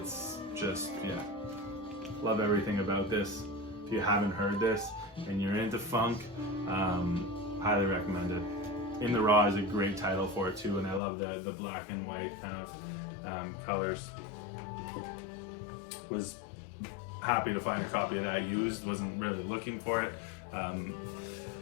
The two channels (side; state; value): right; drops out; at 11.0 s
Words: just, yeah, love everything about this. If you haven't heard this and you're into funk, highly recommend it. In the Raw is a great title for it too, and I love the black and white kind of colors. Was happy to find a copy of that used. Wasn't really looking for it.